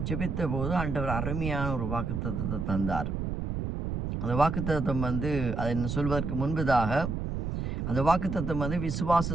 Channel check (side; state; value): right; noise; rumble, 2 dB below the sound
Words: ஜெபித்த போது ஆண்டவர் அருமையான ஒரு வாக்குத்தத்தத்தை தந்தார். அந்த வாக்குத்தத்தம் அதை சொல்வதற்கு முன்பதாக அந்த வாக்குத்தத்தம்